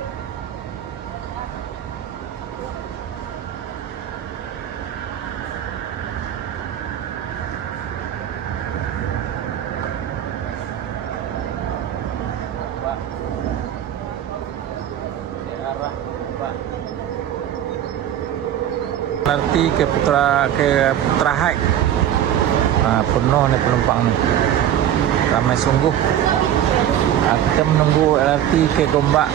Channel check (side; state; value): left; quieter; 10.7 dB